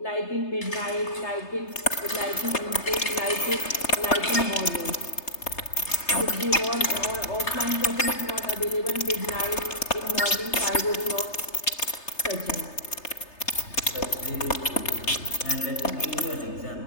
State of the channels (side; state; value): right; late; 3.3 ms